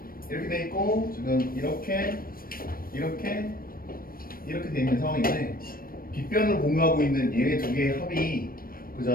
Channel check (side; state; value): right; late; 0.42 ms